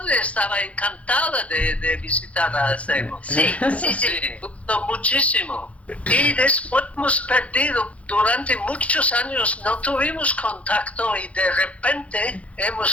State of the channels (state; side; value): late; right; 0.064 ms